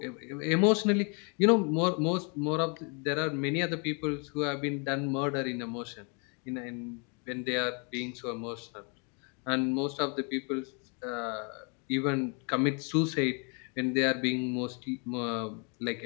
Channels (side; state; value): right; quieter; 35.8 dB